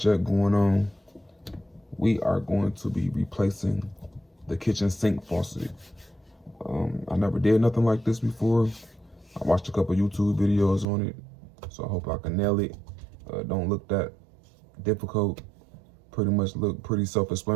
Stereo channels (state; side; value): drops out; left; at 10.9 s